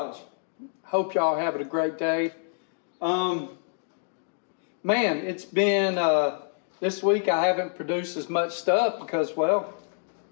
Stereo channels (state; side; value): silent; right; digital silence